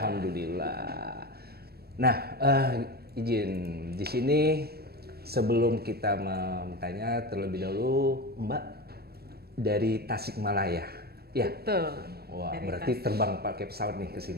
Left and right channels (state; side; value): late; left; 0.46 ms